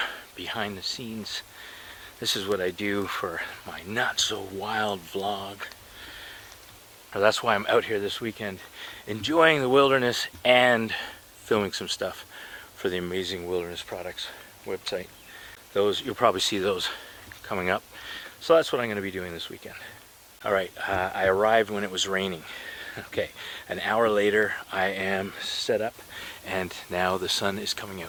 behind the scenes. This is what I do for my not so wild vlog. That's why I'm out here this weekend, enjoying the wilderness and filming some stuff for the Amazing Wilderness Products website. Those, you'll probably see those coming up. So that's what I'm going to be doing this weekend. All right, I arrived when it was raining. Okay, an hour later I am set up and now the sun is coming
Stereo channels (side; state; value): both; identical; correlation 1.00